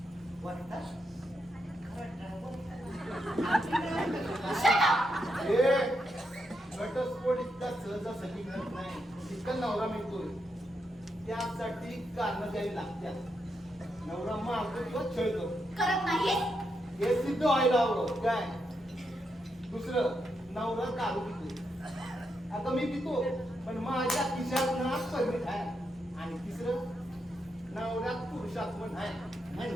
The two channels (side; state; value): both; normal; correlation 0.82